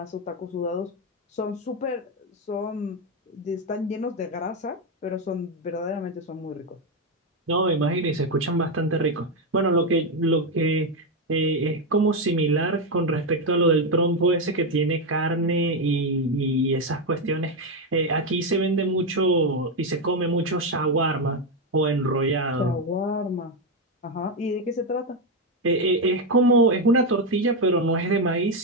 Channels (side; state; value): both; normal; correlation 0.07